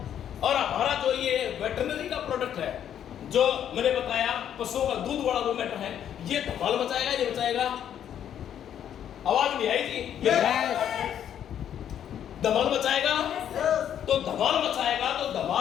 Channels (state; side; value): quieter; right; 9.8 dB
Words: और हमारा जो ये वेटरनरी का प्रोडक्ट है, जो मैंने बताया पशुओं का दूध वाला जो मैटर है, ये धमाल मचाएगा या नहीं मचाएगा? आवाज नहीं आई जी? धमाल मचाएगा। तो धमाल मचाएगा तो